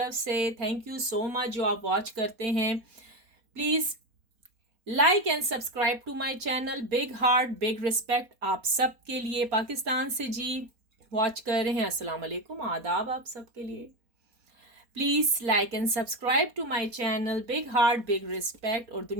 से। थैंक यू सो मच जो आप वॉच करते हैं। Please like and subscribe to my channel. Big heart big respect आप सब के लिए। पाकिस्तान से जी वॉच कर रहे हैं, अस्सलाम वालेकुम, आदाब आप सब के लिए। Please like and subscribe to my channel. Big heart big respect. और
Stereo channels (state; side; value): late; left; 4.2 ms